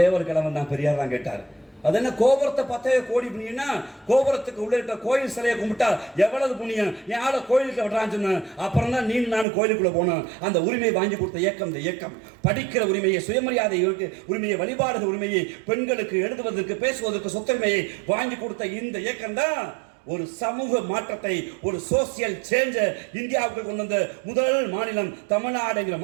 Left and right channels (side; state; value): left; drops out; at 9.5 s